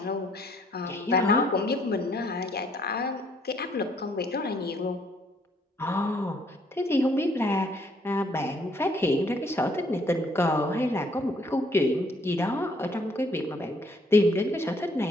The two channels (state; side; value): normal; both; correlation 0.66